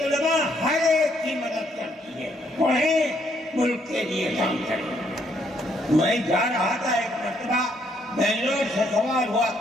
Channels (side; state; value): both; normal; correlation 0.71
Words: ہر ایک کی مدد کرتی ہے، پڑھیں، ملک کے لیے کام کریں۔ میں جا رہا تھا ایک مرتبہ بنگلور سے سوال ہوا،